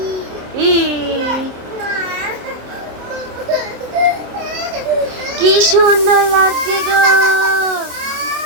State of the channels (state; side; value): late; left; 27 ms